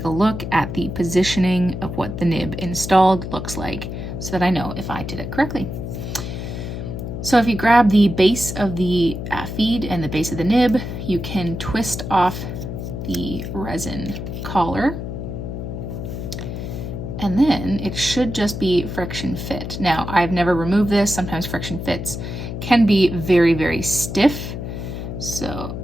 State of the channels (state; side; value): noise; left; hum, 6 dB below the sound